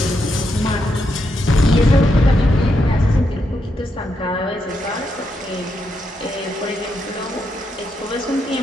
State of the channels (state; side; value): normal; both; correlation 0.81